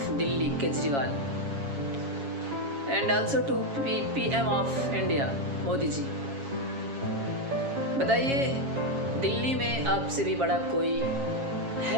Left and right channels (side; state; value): left; late; 7.3 ms